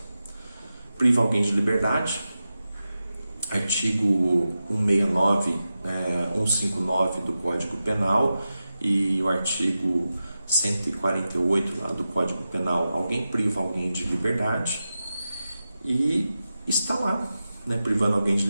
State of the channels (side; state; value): both; inverted; correlation -0.92